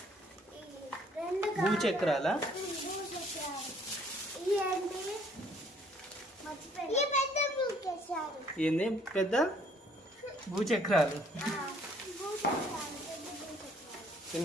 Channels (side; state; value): both; normal; correlation 0.62